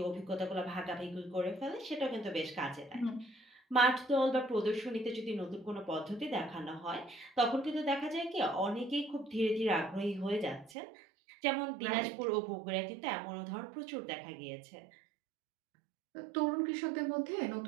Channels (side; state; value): left; drops out; at 10.8 s